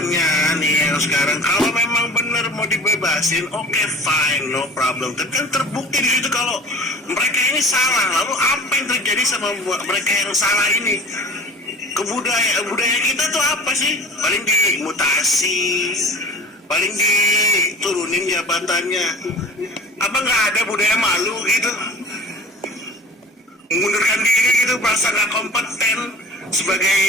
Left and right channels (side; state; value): both; normal; correlation 0.42